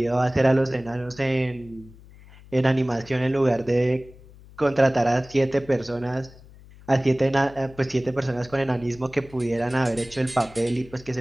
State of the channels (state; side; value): noise; left; hum, 22 dB below the sound